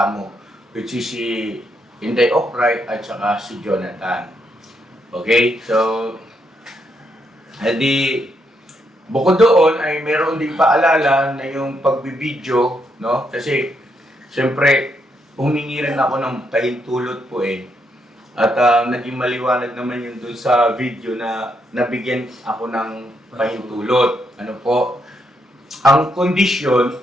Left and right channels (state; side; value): normal; both; correlation 0.78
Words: which is si Inday Ocray at saka si Jonathan. Okay? So, edi, bukod doon ay meron din paalala na yung pagbibideo, no? Kasi, siyempre, humingi rin ako ng pahintulot po eh. At naging maliwanag naman yun dun sa video na nabigyan ako ng pahintulot. Ano po? Ang kondisyon